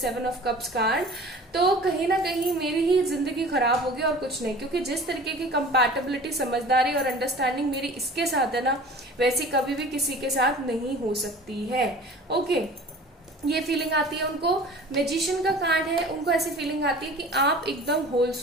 of cups card, तो कहीं ना कहीं मेरी ही जिंदगी खराब होगी और कुछ नहीं. क्योंकि जिस तरीके की कंपैटिबिलिटी, समझदारी और अंडरस्टैंडिंग मेरी इसके साथ है ना, वैसी कभी भी किसी के साथ नहीं हो सकती है. ओके, ये फीलिंग आती है उनको. मैजिशियन का कार्ड है, उनको ऐसी फीलिंग आती है कि आप एकदम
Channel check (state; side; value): normal; both; correlation 0.42